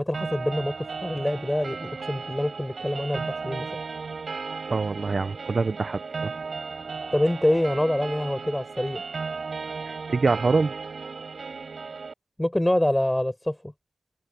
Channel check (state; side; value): normal; both; correlation 0.97